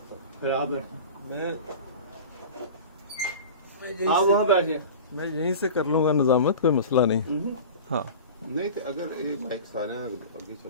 پھر آپ بیٹھیں, میں آپ وہاں بیٹھ جائیں. میں یہیں سے کر لوں گا نظامت, کوئی مسئلہ نہیں. ہاں نہیں تو اگر مائک سارے اگے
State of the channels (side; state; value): both; inverted; correlation -0.34